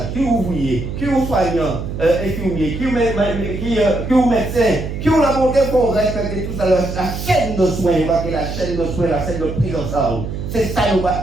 Qui est ouvrier? Qui est soignant, infirmier? Qui est médecin? Qui est la volonté pour respecter tout ça, la chaîne de soins, la chaîne de soins, la chaîne de prise en charge. C'est ça nous va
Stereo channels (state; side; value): noise; right; hum, 6 dB below the sound